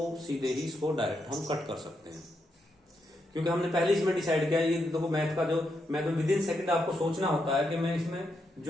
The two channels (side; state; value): both; normal; correlation 0.82